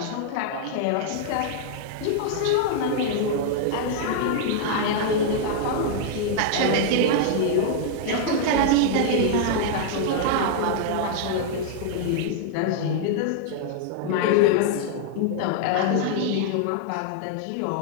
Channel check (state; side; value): different; both; correlation -0.01